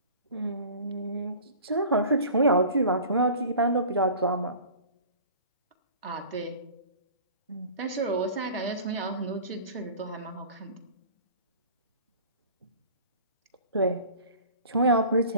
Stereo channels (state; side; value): inverted; both; correlation -0.41